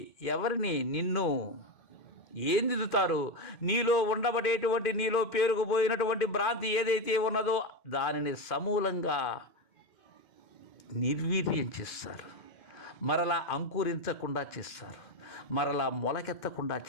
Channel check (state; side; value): late; right; 2.1 ms